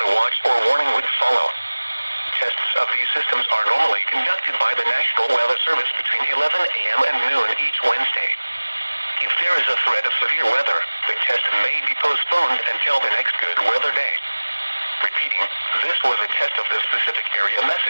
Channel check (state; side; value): inverted; both; correlation -1.00